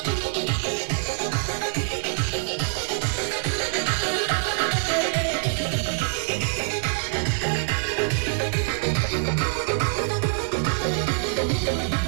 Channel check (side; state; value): left; silent; digital silence